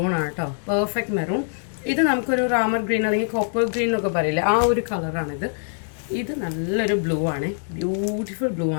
ആണ് കേട്ടോ, പെർഫെക്റ്റ് മെറൂൺ. ഇത് നമുക്കൊരു റാമർ ഗ്രീൻ അല്ലെങ്കിൽ കോപ്പർ ഗ്രീൻ എന്നൊക്കെ പറയില്ലേ, ആ ഒരു കളറാണിത്. ഇത് നല്ലൊരു ബ്ലൂ ആണ്, ബ്യൂട്ടിഫുൾ ബ്ലൂ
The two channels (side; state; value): right; silent; digital silence